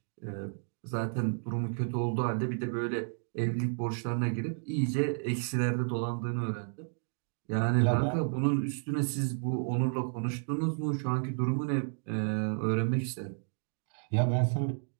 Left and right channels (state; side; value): silent; left; digital silence